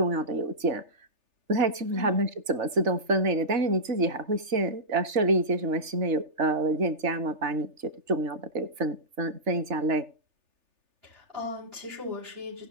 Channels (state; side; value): late; left; 3.4 ms